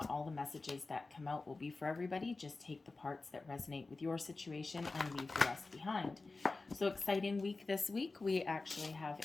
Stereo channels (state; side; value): quieter; right; 3.6 dB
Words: all the messages that come out will be for everybody. Just take the parts that resonate with your situation and leave the rest behind. So exciting week this week. We actually have